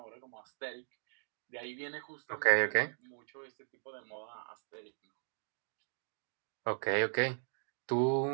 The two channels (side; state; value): left; silent; digital silence